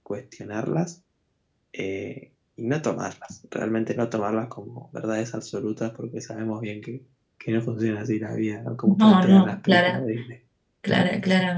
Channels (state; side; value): identical; both; correlation 1.00